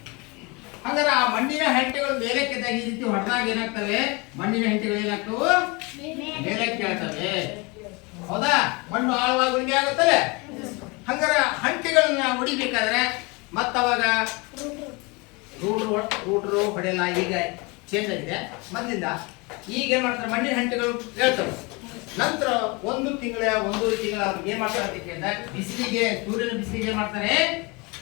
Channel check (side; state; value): right; quieter; 27.6 dB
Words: ಹಾಗಾದ್ರೆ ಆ ಮಣ್ಣಿನ ಹಂಟೆಗಳು ಮೇಲಕ್ಕೆದಾಗ ಈ ರೀತಿ ಹೊಡೆದಾಗ ಏನಾಗ್ತವೆ? ಮಣ್ಣಿನ ಹಂಟೆಗಳು ಏನಾಗ್ತವೆ? ಮೇಲಕ್ಕೆ ಹೇಳ್ತವೆ. ಹೌದಾ? ಮಣ್ಣು ಆಳವಾಗಿ ಉಳುಮೆ ಆಗುತ್ತಲ್ಲ. ಹಂಗಾರ ಹಂಟೆಗಳನ್ನ ಹೊಡಿಬೇಕಾದ್ರೆ ಮತ್ತವಾಗ ರೂಟ್ರು ಹೊಡೆಯಲ್ಲ. ಈಗ ಚೇಂಜ್ ಆಗಿದೆ ಮೊದಲಿಂದ. ಈಗ ಏನ್ ಮಾಡ್ತಾರೆ? ಮಣ್ಣಿನ ಹಂಟೆಗಳು ಹೇಳ್ತವೆ. ನಂತರ 1 ತಿಂಗಳ 1.5 ತಿಂಗಳ ಅವ್ರಿಗೆ ಏನ್ ಮಾಡ್ತಾರೆ ಅಂತ ಕೇಳಿದ್ರೆ ಬಿಸಿಲಿಗೆ, ಸೂರ್ಯನ ಬಿಸಿಲಿಗೆ ಏನ್ ಮಾಡ್ತಾರೆ?